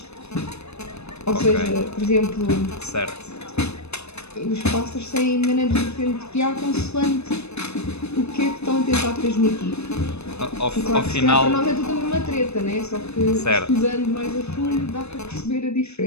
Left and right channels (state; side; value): late; right; 0.80 ms